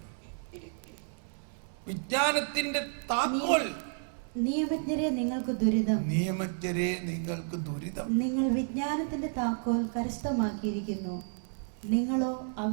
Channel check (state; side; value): silent; left; 57 dB below the other